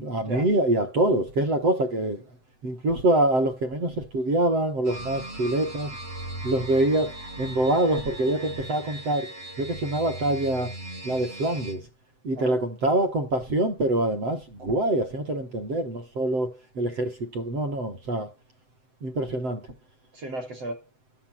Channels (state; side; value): late; left; 7.8 ms